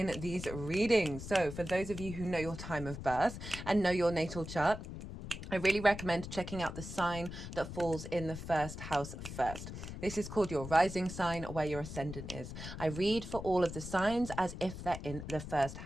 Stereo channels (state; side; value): noise; left; rumble, 9 dB below the sound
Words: these readings. So for those of you who know your time of birth and know your natal chart, I really recommend checking out the sign that falls in the first house first. This is called your rising sign, where your ascendant is. I read for all of the signs as if they're in the first